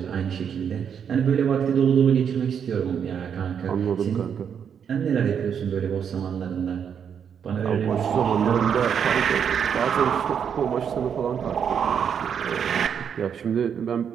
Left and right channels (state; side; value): quieter; left; 7.7 dB